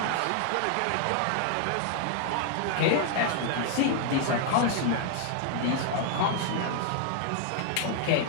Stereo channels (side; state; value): both; different; correlation 0.00